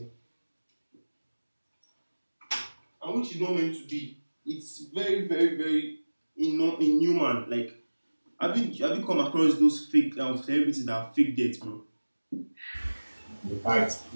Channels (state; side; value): inverted; both; correlation -1.00